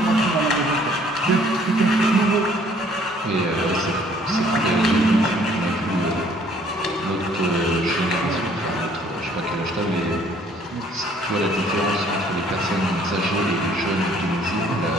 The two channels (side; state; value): both; normal; correlation 0.60